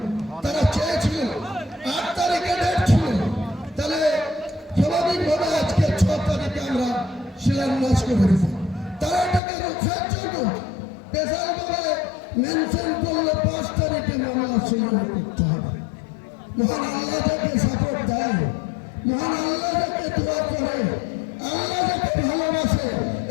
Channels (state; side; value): drops out; right; at 9.4 s